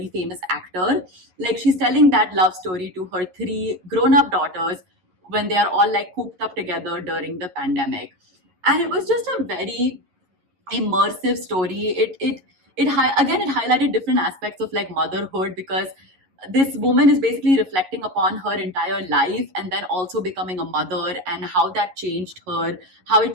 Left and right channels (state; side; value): late; left; 11 ms